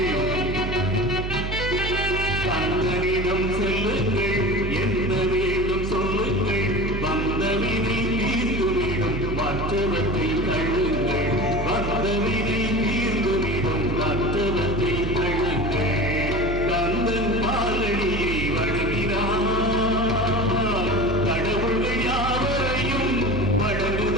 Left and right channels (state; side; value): noise; right; hum, 3 dB below the sound